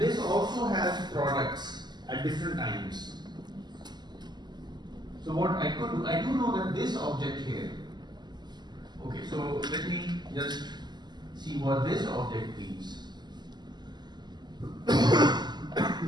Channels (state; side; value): late; left; 0.21 ms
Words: also has products at different times. So what I could do, I do know that this object here. Okay, so let me just see what this object means.